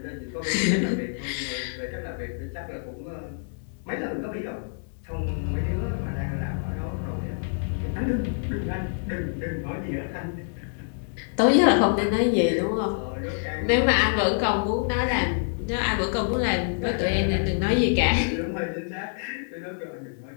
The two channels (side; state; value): right; silent; digital silence